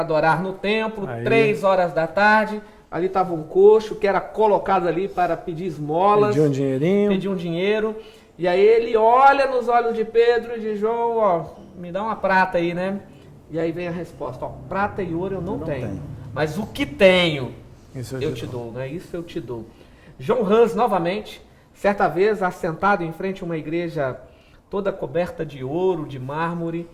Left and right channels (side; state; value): both; identical; correlation 1.00